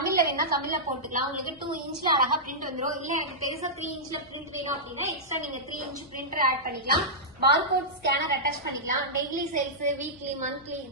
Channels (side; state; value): left; noise; hum, 28 dB below the sound